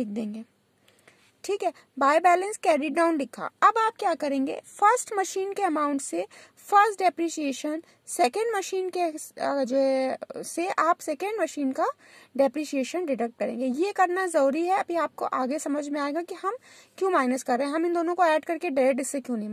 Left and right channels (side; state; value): both; identical; correlation 1.00